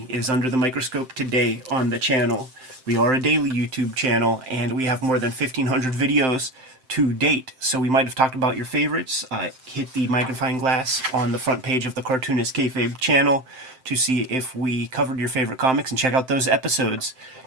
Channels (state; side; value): late; left; 7.7 ms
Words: is under the microscope today on the channel. We are a daily YouTube channel, and we have more than 1,500 videos to date. So we might have talked about your favorites. Hit the magnifying glass on the front page of the Cartoonist Kayfabe channel to see if we covered your favorite comics, and check out those episodes.